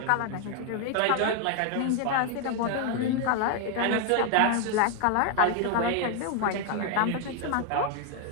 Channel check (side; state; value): both; different; correlation 0.01